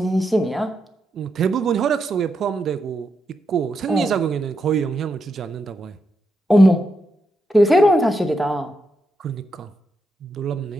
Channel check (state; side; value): normal; both; correlation 0.84